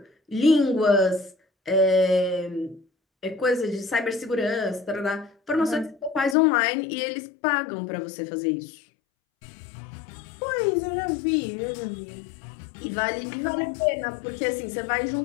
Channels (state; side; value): drops out; right; at 6.4 s